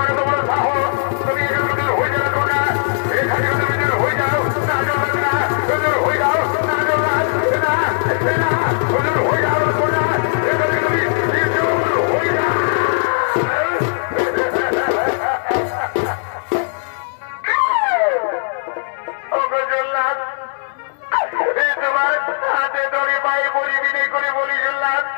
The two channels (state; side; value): silent; right; 66 dB below the other